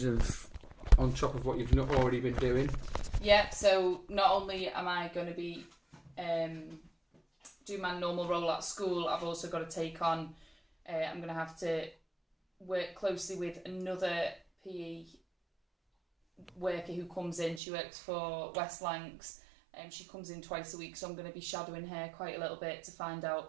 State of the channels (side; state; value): left; drops out; at 17.6 s